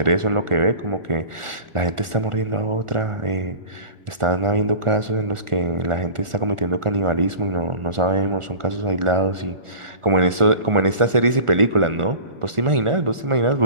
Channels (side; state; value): left; late; 1.4 ms